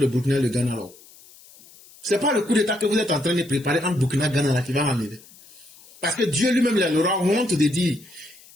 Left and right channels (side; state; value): left; noise; hiss, 24 dB below the sound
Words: Burkina et le Ghana, là. C'est pas le coup d'état que vous êtes en train de préparer entre Burkina et le Ghana, là, qui va m'enlever. Parce que Dieu lui-même, il aura honte de dire,